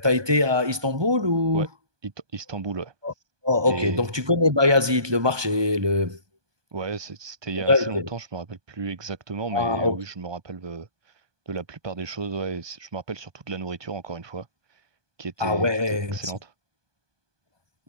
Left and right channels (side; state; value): left; late; 1.2 ms